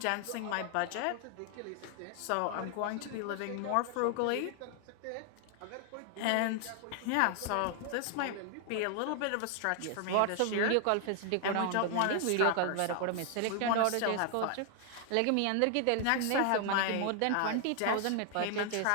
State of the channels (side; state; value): both; different; correlation 0.00